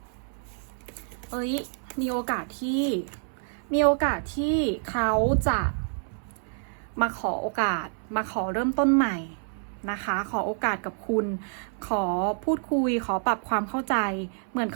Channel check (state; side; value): silent; left; 60 dB below the other